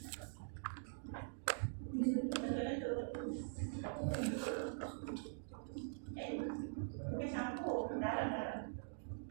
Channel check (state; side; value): silent; left; digital silence